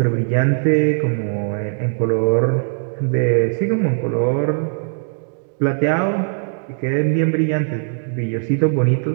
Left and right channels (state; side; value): silent; left; 61 dB below the other